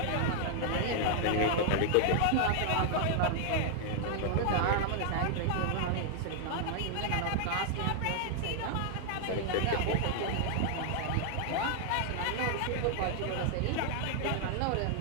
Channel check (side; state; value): both; different; correlation 0.00